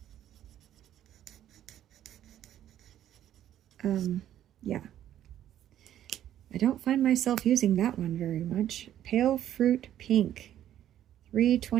Yeah. I don't find myself using that one very much. Pale fruit pink.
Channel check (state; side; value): quieter; left; 11.4 dB